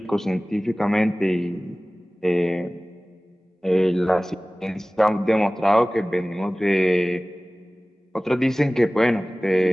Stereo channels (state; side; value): normal; both; correlation 0.98